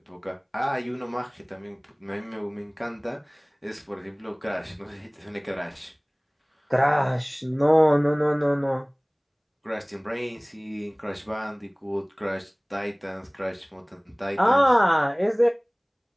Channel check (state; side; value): identical; both; correlation 1.00